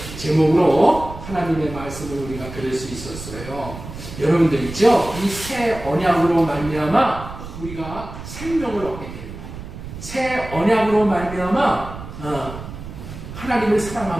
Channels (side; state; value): right; noise; rumble, 12 dB below the sound